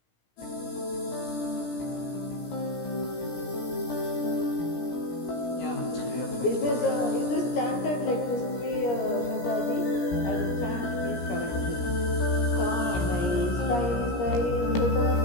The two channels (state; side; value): late; right; 17 ms